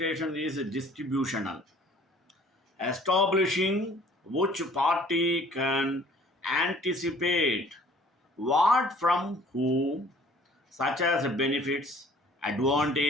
is distributional, establishing which party can anticipate what from whom, such as benefits,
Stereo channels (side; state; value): both; normal; correlation 0.54